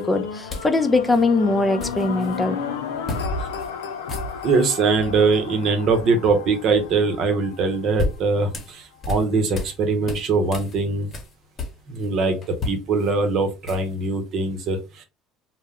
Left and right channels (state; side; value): normal; both; correlation 0.54